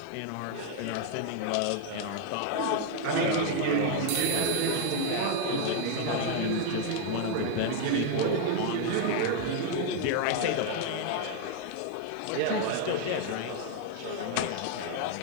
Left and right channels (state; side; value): different; both; correlation 0.00